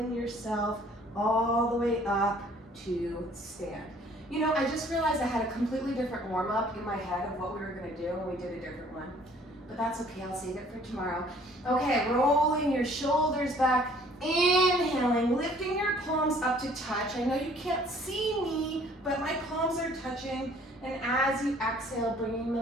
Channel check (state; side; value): normal; both; correlation 0.56